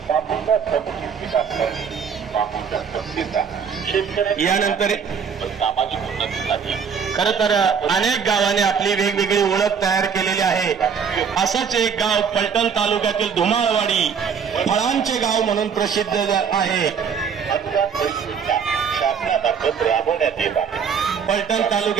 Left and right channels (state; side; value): quieter; left; 6.8 dB